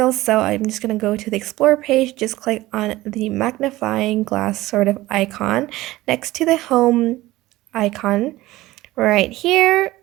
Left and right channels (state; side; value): quieter; left; 17.7 dB